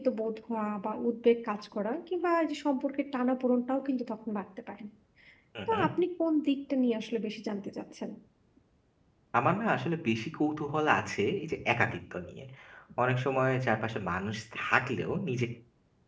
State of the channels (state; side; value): identical; both; correlation 1.00